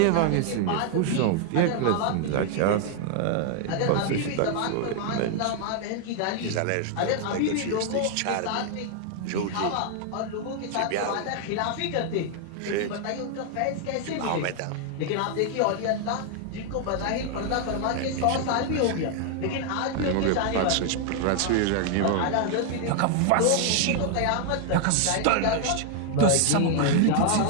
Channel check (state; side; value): different; both; correlation 0.00